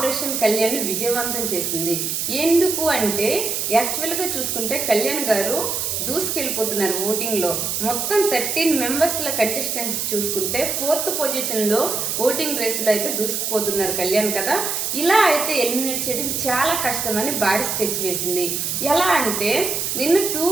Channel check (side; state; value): right; noise; hiss, 1 dB below the sound